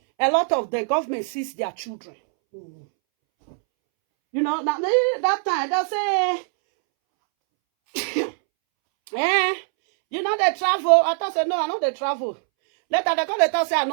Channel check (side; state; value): left; silent; 64 dB below the other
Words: A lot of the government sees their children. You know, that time they say, you know they travel. I thought say no, I know they travel. Later they come they say I